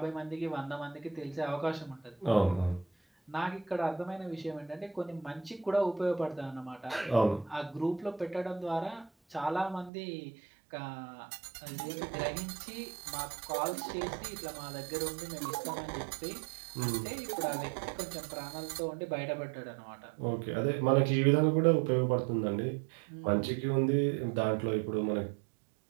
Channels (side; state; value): left; drops out; at 9.9 s